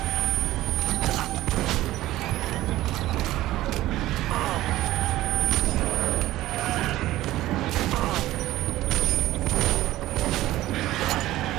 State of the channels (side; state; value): left; quieter; 15.8 dB